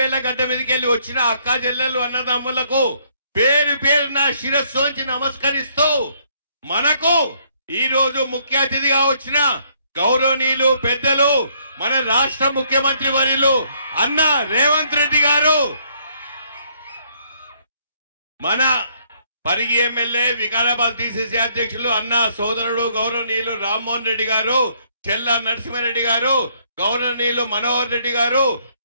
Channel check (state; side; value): inverted; both; correlation -0.68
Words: గడ్డ మీదకి వెళ్ళి వచ్చిన అక్క చెల్లెలు అన్నదమ్ములకు పేరు పేరున శిరస్సు వంచి నమస్కరిస్తూ మనకు ఈ రోజు ముఖ్య అతిథిగా వచ్చిన గౌరవనీయులు పెద్దలు మన రాష్ట్ర ముఖ్యమంత్రి వర్యులు అన్న రేవంత్ రెడ్డి గారు, మన పరిగి ఎమ్మెల్యే వికారాబాద్ డిసిసి అధ్యక్షులు అన్న సోదరుడు గౌరవనీయులు రామ్మోహన్ రెడ్డి గారు, చెల్ల నరసింహారెడ్డి గారు, గౌరవనీయులు మనోహర్ రెడ్డి గారు,